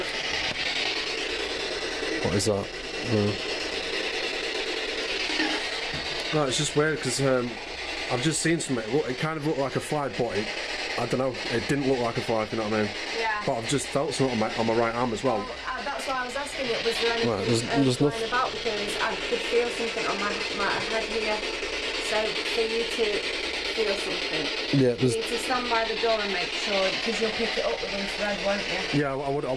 What is that? No, it's just weird because I've just seen something. It kind of looked like a fly, but I don't know. It didn't look like a fly, if you know what I mean. Yeah. But I've just felt something on my right arm as well. That's why I was asking it. Was there anything there's flying about? Because I could feel something on my head here. So for you to feel something, you need to stand by the door and make sure, because you'll pick it up with infrared, won't you? Yeah, I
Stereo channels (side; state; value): both; identical; correlation 1.00